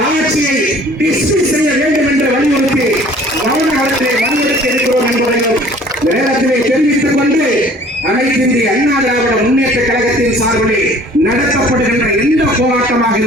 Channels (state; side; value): normal; both; correlation 0.52